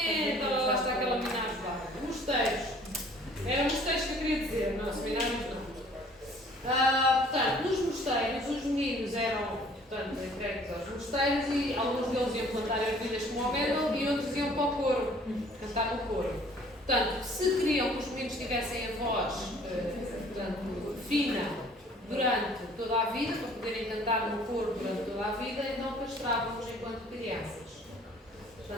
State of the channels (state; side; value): normal; both; correlation 0.55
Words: Olha lá está aquela minagem lá. Mosteiros. Eram mosteiros que eu queria dizer, não, seminários não. Portanto, nos mosteiros, os meninos eram, portanto, entregues aos mosteiros e alguns deles iam plantar ervilhas como Homero e outros iam para o coro, cantar no coro. Portanto, se queriam que os meninos tivessem a voz, portanto, fina durante toda a vida, para poderem cantar no coro durante toda a vida, então castravam-nos enquanto crianças.